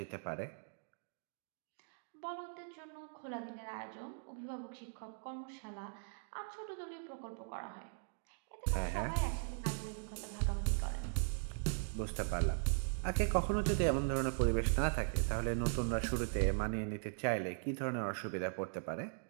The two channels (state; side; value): silent; left; digital silence